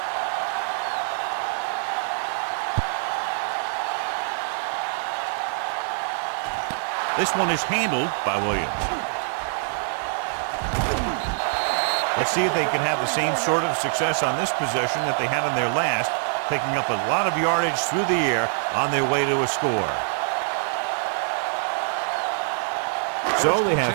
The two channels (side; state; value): left; silent; 62 dB below the other